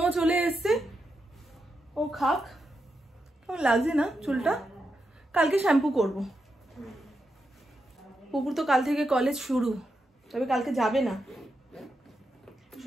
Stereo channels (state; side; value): normal; both; correlation 0.85